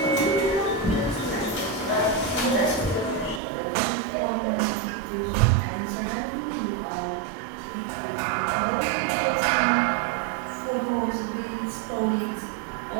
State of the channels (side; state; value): left; drops out; at 3.4 s